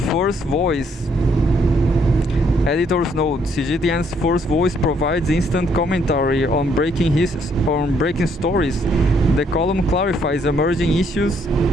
First Voice. Editor's note: CGTN's First Voice provides instant commentary on breaking stories. The column clarifies emerging issues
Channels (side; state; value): both; normal; correlation 0.69